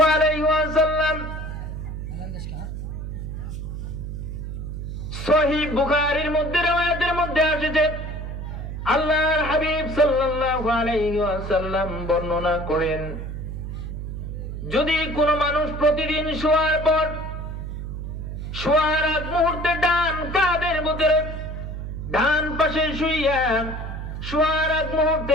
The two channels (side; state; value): right; noise; hum, 6 dB below the sound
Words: আলাইহি ওয়াসাল্লাম সহিহ বুখারীর মধ্যে রওয়ায়াতের মধ্যে এসেছে, আল্লাহর হাবিব সাল্লাল্লাহু আলাইহি ওয়াসাল্লাম বর্ণনা করেন, যদি কোন মানুষ প্রতিদিন শোয়ার পর শোয়ার আগ মুহূর্তে ডান কাঁধের ভিতরে ডান পাশে শুইয়া শোয়ার আগ